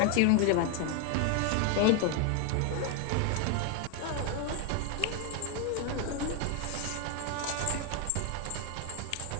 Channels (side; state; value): both; different; correlation 0.01